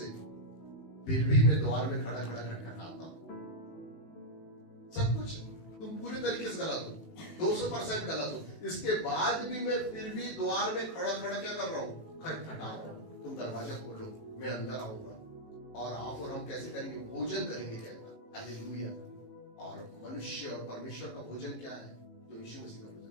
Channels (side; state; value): right; late; 18 ms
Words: फिर भी मैं द्वार में खड़ा खड़ा खटखटाता हूं। सब कुछ तुम पूरे तरीके से गलत हो, 200% गलत हो, इसके बाद भी मैं फिर भी द्वार में खड़ा खड़ा क्या कर रहा हूं? खटखटा रहा हूं। तुम दरवाजा खोलो, मैं अंदर आऊंगा, और आप और हम कैसे करेंगे? भोजन करेंगे। कहना हालेलुया। और मनुष्य और परमेश्वर का भोजन क्या है? जो यीशु मसीह का